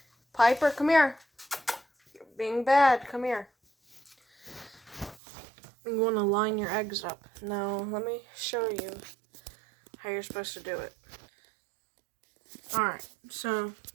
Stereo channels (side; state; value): left; drops out; at 5.2 s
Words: Piper, come here. You're being bad. Come here. You want to line your eggs up. Now, let me show you how you're supposed to do it. Alright, so